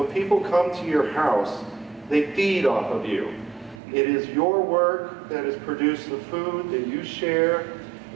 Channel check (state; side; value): drops out; left; at 3.8 s